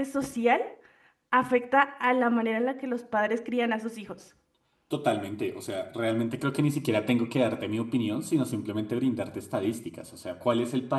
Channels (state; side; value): identical; both; correlation 1.00